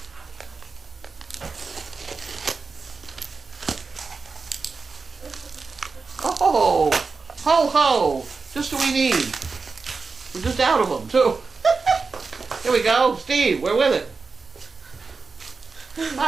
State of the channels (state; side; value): quieter; left; 4.5 dB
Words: Oh, ho ho! Just what we need. We're just out of them too. Here we go, Steve. We're with it.